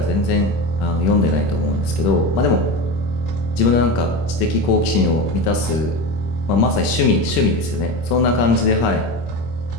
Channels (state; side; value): late; right; 26 ms